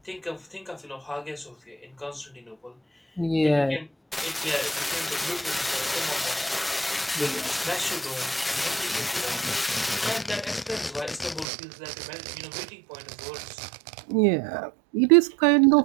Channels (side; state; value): left; drops out; at 11.5 s